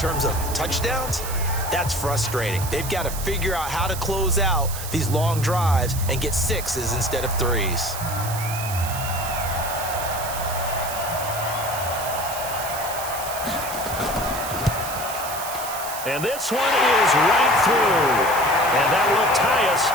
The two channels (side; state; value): right; noise; hiss, 9 dB below the sound